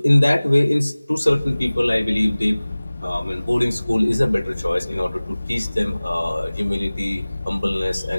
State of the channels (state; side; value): inverted; both; correlation -0.99